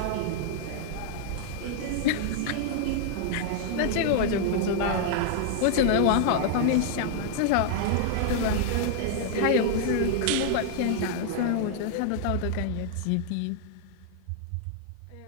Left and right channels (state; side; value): different; both; correlation -0.01